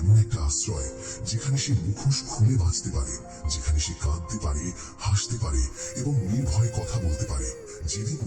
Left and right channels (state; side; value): identical; both; correlation 1.00